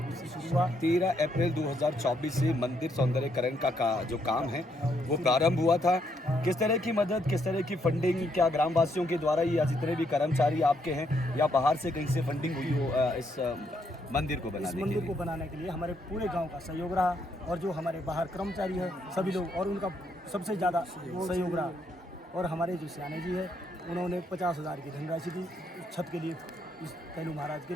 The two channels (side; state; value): both; normal; correlation 0.74